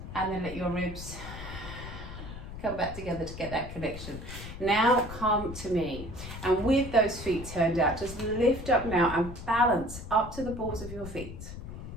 and then let your ribs come back together to get that connection. Now come to me. And with those feet turned out, just lift up now and balance up to the balls of your feet.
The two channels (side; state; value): left; noise; rumble, 10 dB below the sound